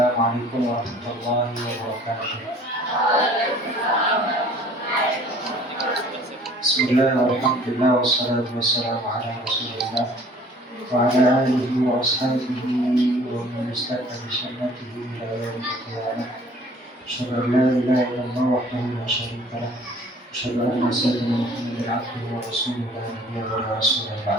warahmatullahi wabarakatuh. Bismillahirrahmanirrahim. Wassalatu wassalamu ala Rasulillah wa ala alihi wa ashabihi wa man istaqama bi sunnatihi ila yaumil qiyamah. Asyhadu an la ilaha illallah wahdahu la syarika lah. Asyhadu anna sayyidina Muhammadan abduhu wa rasuluhu la nabiyya wa la rasula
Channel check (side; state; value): both; normal; correlation 0.52